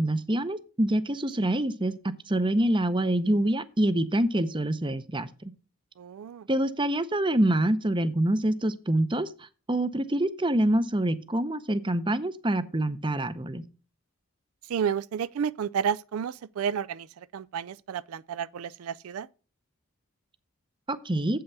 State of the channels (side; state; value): both; normal; correlation 0.72